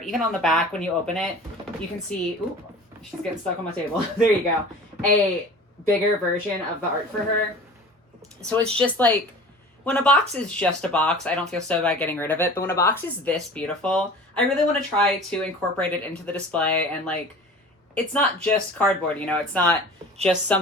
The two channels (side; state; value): both; normal; correlation 0.41